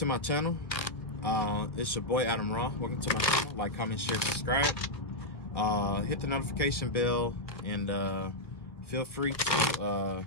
my channel. It's your boy Adam Raw. Welcome to my channel. Like, comment, share, subscribe. Hit the notification bell and feel free to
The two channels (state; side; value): late; right; 1.6 ms